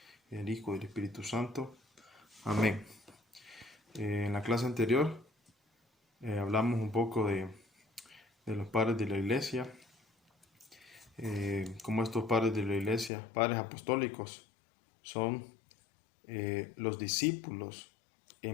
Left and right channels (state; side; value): drops out; right; at 13.1 s